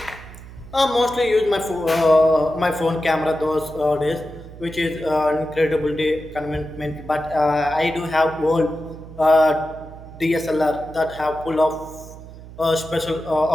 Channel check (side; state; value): right; noise; hum, 16 dB below the sound